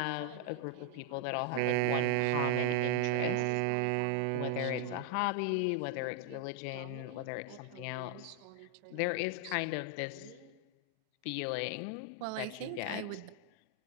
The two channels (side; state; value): both; different; correlation 0.00